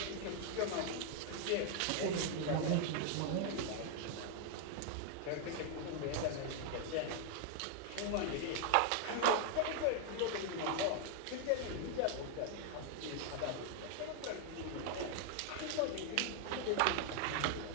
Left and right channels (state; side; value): different; both; correlation 0.00